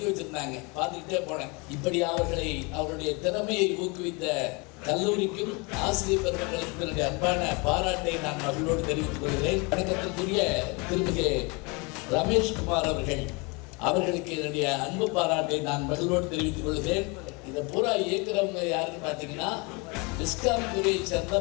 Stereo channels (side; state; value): right; quieter; 29.2 dB